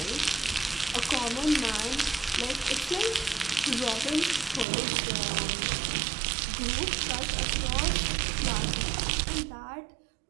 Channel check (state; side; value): drops out; left; at 4.7 s